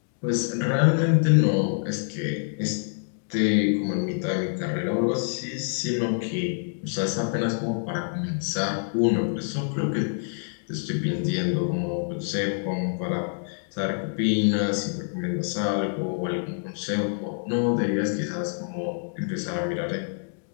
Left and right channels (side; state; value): right; silent; digital silence